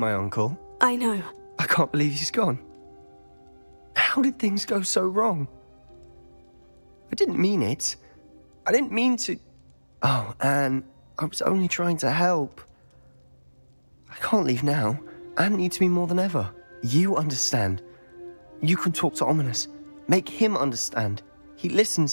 uncle. I know. I can't believe he's gone. How did things go so wrong? I didn't mean it. I didn't mean to... Oh, Anne, I was only trying to help. I can't leave now. Anne needs me more than ever. You understand. You can talk to Ominous. Make him understand. He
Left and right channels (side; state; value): both; inverted; correlation -1.00